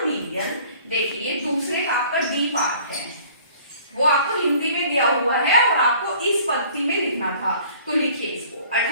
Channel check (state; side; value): inverted; both; correlation -0.52